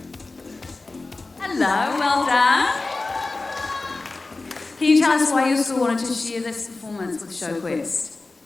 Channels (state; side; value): quieter; right; 3.4 dB